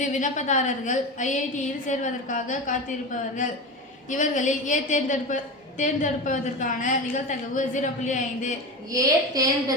விண்ணப்பதாரர்கள் ஐஐடியில் சேர்வதற்காக காத்திருப்பவர்கள். இவர்களில் ஏ தேர்ந்தெடுப்பதற்கான நிகழ்தகவு 0.5. ஏ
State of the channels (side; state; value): both; normal; correlation 0.25